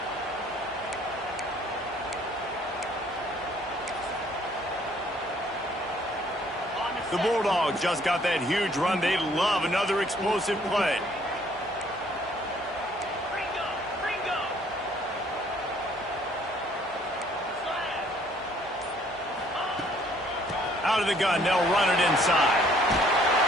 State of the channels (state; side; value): normal; both; correlation 0.61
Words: The Bulldogs just got that huge run. They love another explosive play. Out of the gun, they'll run it inside.